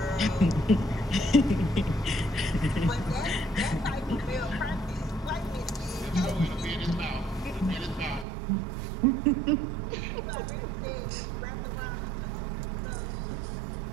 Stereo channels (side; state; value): left; drops out; at 8.2 s